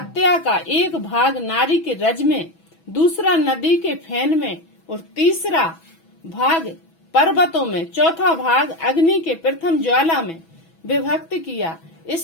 का एक भाग नारी के रज में, दूसरा नदी के फेन में और तीसरा भाग पर्वतों में, चौथा भाग अग्नि के प्रथम ज्वाला में विभक्त किया।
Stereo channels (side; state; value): right; late; 6.1 ms